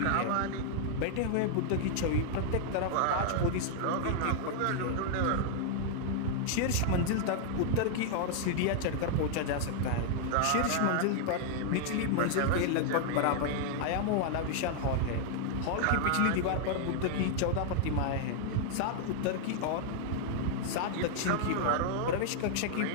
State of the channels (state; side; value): different; both; correlation 0.00